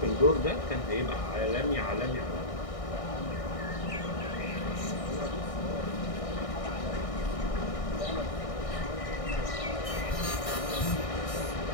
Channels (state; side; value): late; right; 1.6 ms